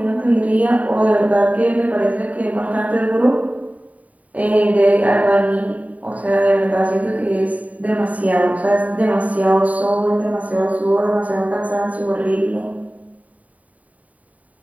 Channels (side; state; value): left; late; 0.070 ms